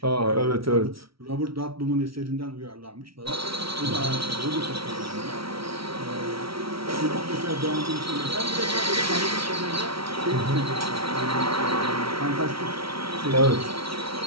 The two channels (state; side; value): late; left; 0.75 ms